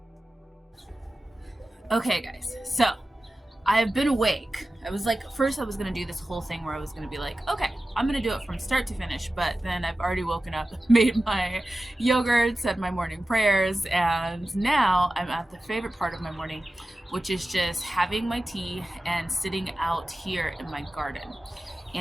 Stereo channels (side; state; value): both; normal; correlation 0.94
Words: Okay guys, so I've been awake. I was like, first I was gonna do this whole thing where I was gonna be like, okay, I'm gonna do it from start to finish, but then I've already woken up, made my yogurt, said my morning prayers, and now I'm at the favorite part of my morning, which is just having my tea and sitting out here in my garden.